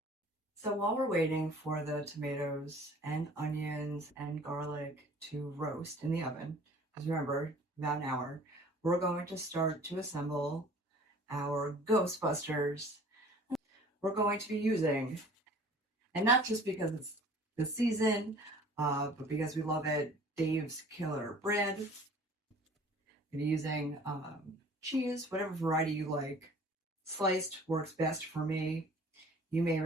So while we're waiting for the tomatoes and onions and garlic to roast in the oven, because remember, about an hour, we're going to start to assemble our Ghostbusters. We're going to be using, and not just because it's the season, but because we love it, Dave's Killer Bread. I'm using cheese, whatever variety you like. Sliced works best for me. You may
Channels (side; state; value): both; normal; correlation 0.49